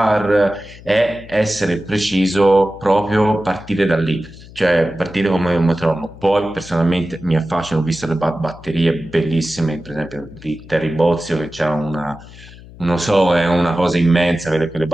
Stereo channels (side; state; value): left; noise; hum, 19 dB below the sound